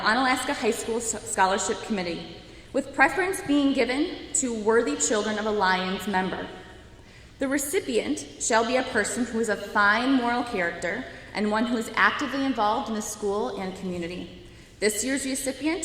Onalaska High School Scholarship Committee, with preference being given to worthy children of a Lions member. The recipient shall be a person who is of fine moral character and one who is actively involved in the school and community. This year's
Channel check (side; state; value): both; identical; correlation 1.00